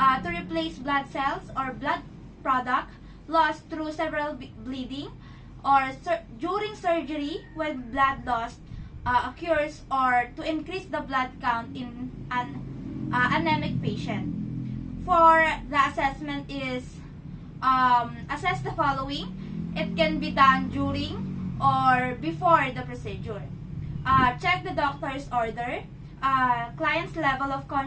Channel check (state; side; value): identical; both; correlation 1.00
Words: to replace blood cells or blood product lost through several bleeding or during surgery when blood loss occurs, or to increase the blood count in an anemic patient. For the assessment is assess the following. It can be done during or before the procedure. Check the doctor's order, client's level of